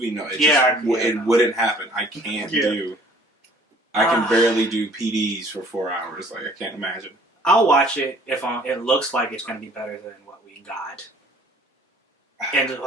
no, it wouldn't happen. I can't do. I can barely do PDs for 4 hours. Like I can't imagine. I'll watch it if it looks like it's gonna be better than what we got. And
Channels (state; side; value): normal; both; correlation 0.55